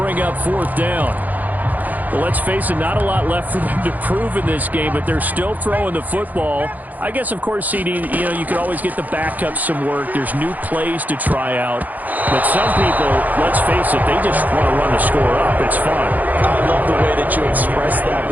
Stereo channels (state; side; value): late; left; 0.081 ms